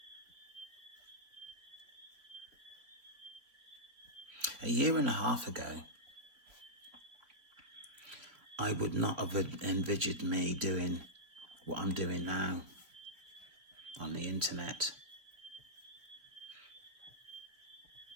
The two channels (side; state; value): left; late; 3.4 ms